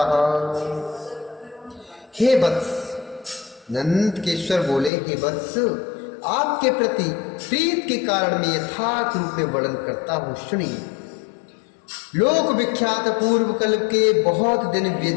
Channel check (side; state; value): right; drops out; at 4.9 s